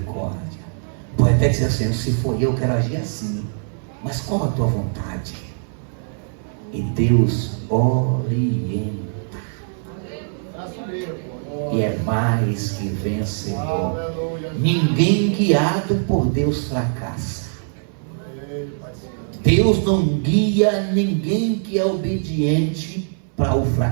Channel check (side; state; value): left; silent; 61 dB below the other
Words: Pode até dizer assim: se for eu quero agir assim, mas qual a tua vontade? E Deus orienta. E é mais que vencedor. Ninguém guiado por Deus fracassa. Deus não guia ninguém que é obediente para o